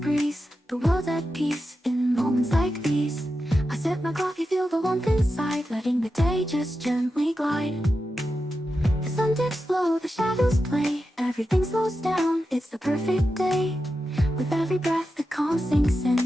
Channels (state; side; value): normal; both; correlation 0.90